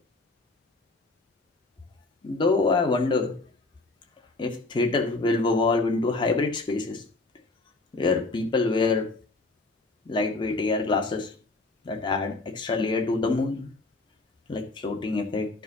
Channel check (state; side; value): quieter; right; 3.2 dB